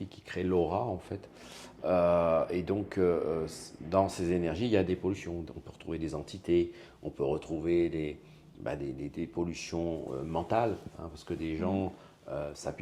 qui créent l'aura, en fait. Et donc, dans ces énergies, il y a des pollutions. On peut retrouver des entités, on peut retrouver des pollutions mentales, hein, parce que des gens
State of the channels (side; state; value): both; identical; correlation 1.00